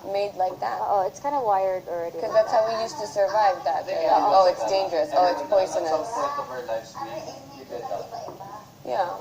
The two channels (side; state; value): both; identical; correlation 1.00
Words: made like that. Oo, it's kind of wired already. Because that's how we used to survive that. Like, oh, it's dangerous. Oh, it's poisonous. Yeah,